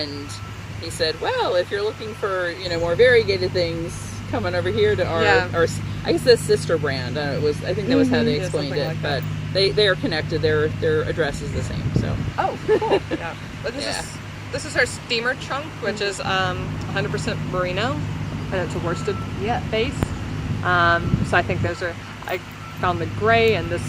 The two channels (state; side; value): identical; both; correlation 1.00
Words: he said, "Well, if you're looking for more variegated things, come on over here to our I guess the sister brand. I think that was how they Yeah, explained something it, like but they are connected. Their address is the same. So Oh, cool. Yeah. But this is our steamer chunk, which is 100% merino, and it's a worsted base. So I think I found the gray and this